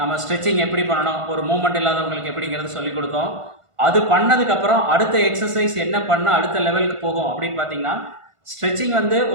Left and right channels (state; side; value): late; left; 1.5 ms